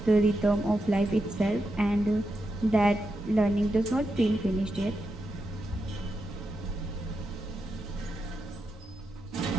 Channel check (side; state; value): both; normal; correlation 0.86